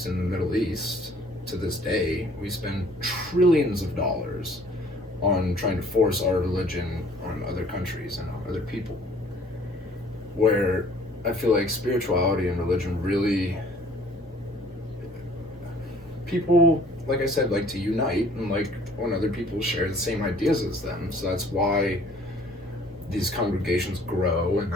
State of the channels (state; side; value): normal; both; correlation 0.56